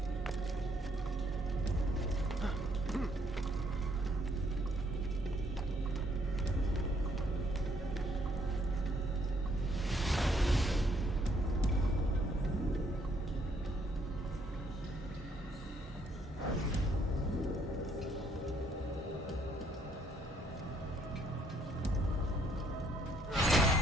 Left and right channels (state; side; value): normal; both; correlation 0.68